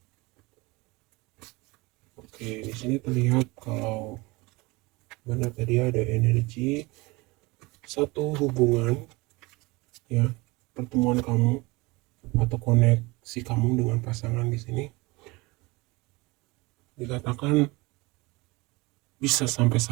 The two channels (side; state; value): left; quieter; 23.9 dB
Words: Oke, di sini terlihat kalau benar tadi ada energi satu hubungan, ya, pertemuan kamu atau koneksi kamu dengan pasangan di sini dikatakan bisa sampai